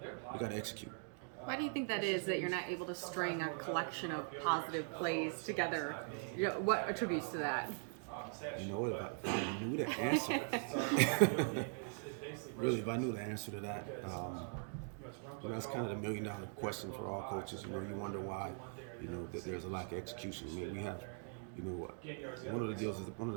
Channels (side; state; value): left; silent; 50 dB below the other